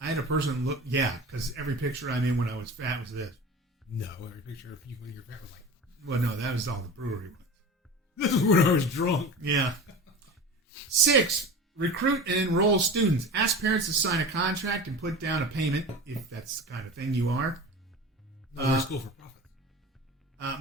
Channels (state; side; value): normal; both; correlation 0.33